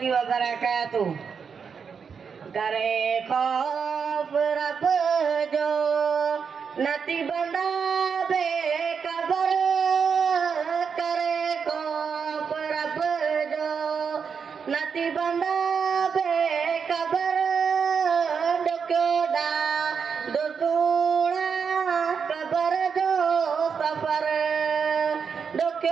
wabarakatuh. Kare khof rab jo nati banda be kabar, kare khof rab jo nati banda be kabar, dokyoda dosuna kabar jo safar,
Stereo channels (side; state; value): left; quieter; 6.2 dB